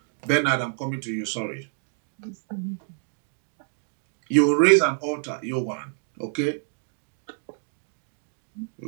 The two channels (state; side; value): silent; left; 60 dB below the other